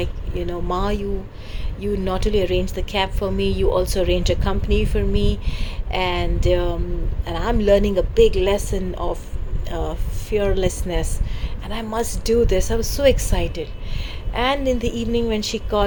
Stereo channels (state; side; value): identical; both; correlation 1.00